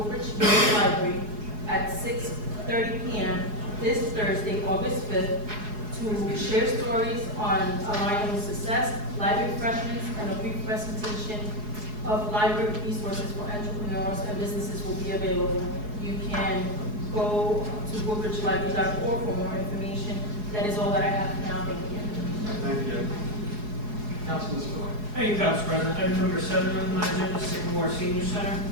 Library at 6:30 p.m. this Thursday, August 5th, to share stories on Alignable success, library refreshments, and a brief presentation of library resources for entrepreneurs and businesses will be available. You can go to woodbridgelibrary.org for more information. That is all that I have for now. Thank you. Thank you. Councilman Spiller. Thank you, Council President. Item number 7 on my agenda, Sycamore Senior Center.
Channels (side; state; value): left; late; 4.8 ms